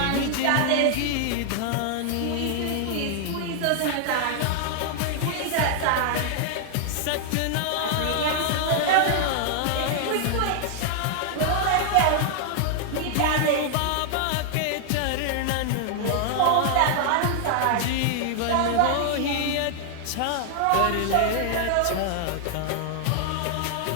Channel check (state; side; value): different; both; correlation 0.00